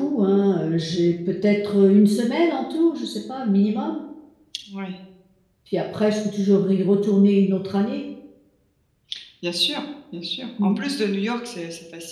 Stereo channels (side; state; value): both; identical; correlation 1.00